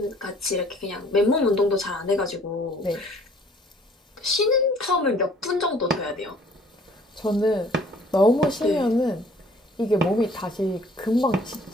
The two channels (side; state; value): both; normal; correlation 0.57